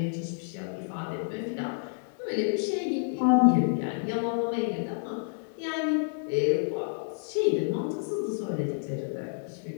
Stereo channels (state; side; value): silent; right; digital silence